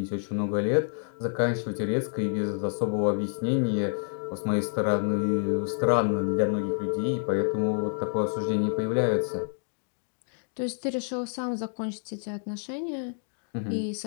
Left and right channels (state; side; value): silent; right; digital silence